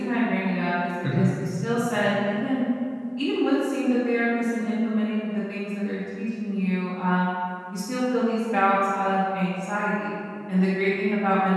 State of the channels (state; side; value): identical; both; correlation 1.00